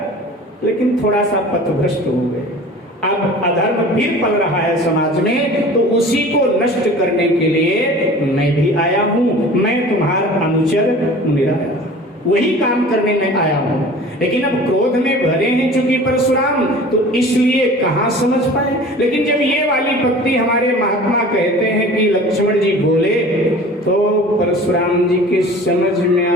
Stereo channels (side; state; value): both; normal; correlation 0.42